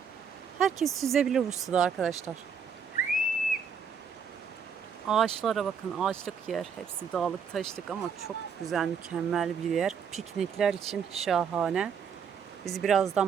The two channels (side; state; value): left; quieter; 6.6 dB